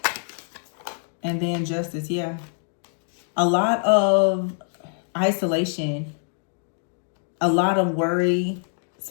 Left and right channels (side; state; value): right; silent; 62 dB below the other